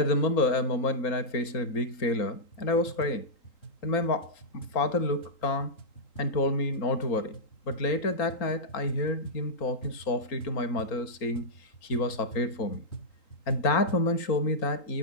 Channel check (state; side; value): late; right; 3.8 ms